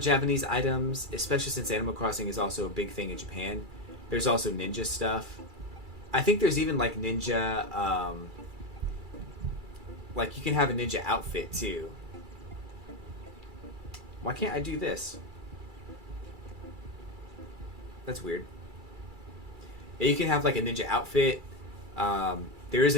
Japanese items, especially since Animal Crossing is also a big thing in Japan. There's also ninja stuff. I think there's even like ninja, like you can have a ninja outfit too. Why can't I do this? That's weird. Yeah, you can have like a ninja outfit. There is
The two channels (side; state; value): left; late; 2.3 ms